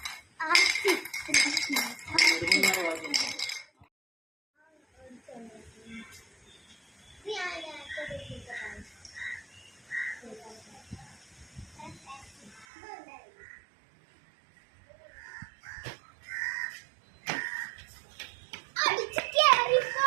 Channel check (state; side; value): drops out; left; at 12.7 s